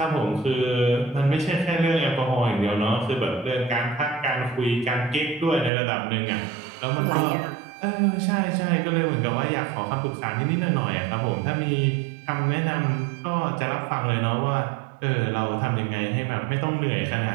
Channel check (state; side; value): drops out; left; at 5.7 s